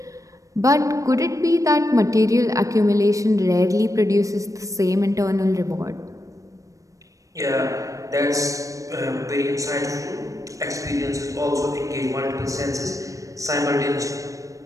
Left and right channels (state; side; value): late; left; 0.16 ms